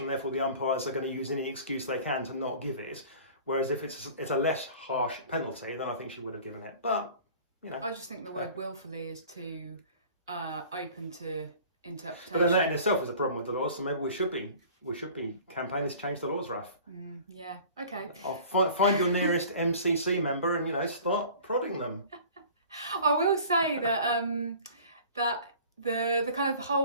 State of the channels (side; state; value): both; inverted; correlation -0.46